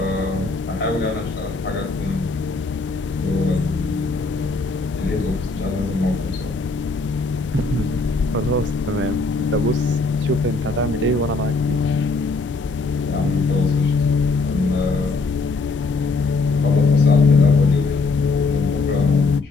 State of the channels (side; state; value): right; quieter; 3.7 dB